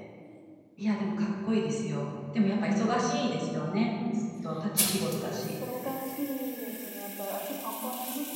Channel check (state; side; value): identical; both; correlation 1.00